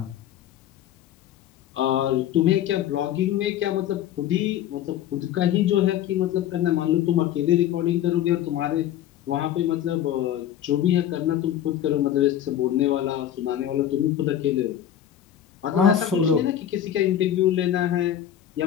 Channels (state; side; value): quieter; right; 11.0 dB